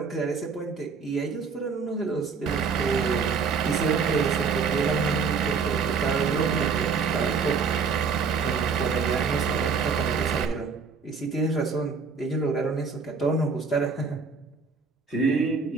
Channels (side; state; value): left; quieter; 5.2 dB